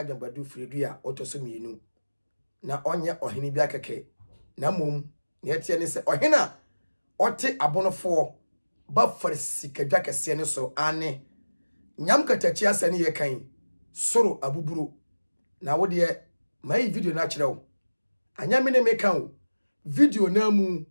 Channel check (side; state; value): both; inverted; correlation -1.00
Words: firidua otoso mienu na onye ohene bi akeke na mom ne etie ne se ohena ote abonofo ba farsikadwa kese ne so ane nyam katachi asane ye kan soro abuburo na wo de mai video na kirewo anya me ne me kan video na mu